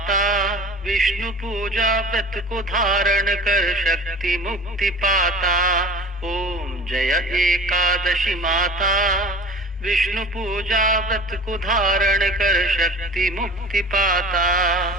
विष्णु पूजा व्रत को धारण कर शक्ति मुक्ति पाता। ओम जय एकादशी माता, विष्णु पूजा व्रत को धारण कर शक्ति मुक्ति पाता।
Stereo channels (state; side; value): normal; both; correlation 0.41